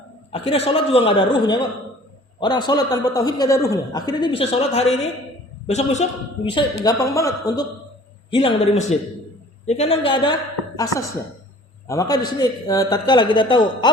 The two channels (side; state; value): both; normal; correlation 0.49